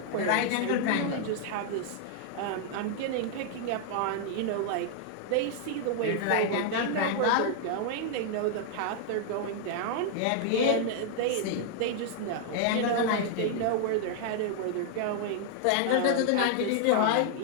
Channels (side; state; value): both; different; correlation -0.01